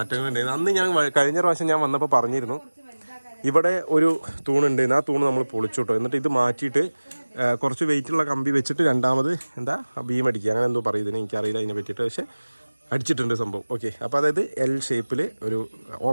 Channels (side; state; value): both; inverted; correlation -1.00